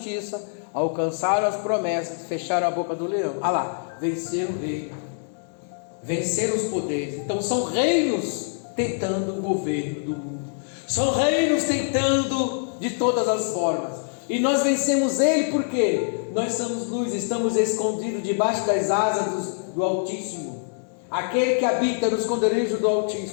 alcançaram as promessas, fecharam a boca do leão. Lá, venceram o reino, venceram os poderes. Então são reinos tentando o governo do mundo, são reinos tentando de todas as formas, e nós vencemos ele porque nós somos luz, estamos escondidos debaixo das asas do Altíssimo, aquele que habita no esconderijo do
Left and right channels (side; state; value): right; silent; digital silence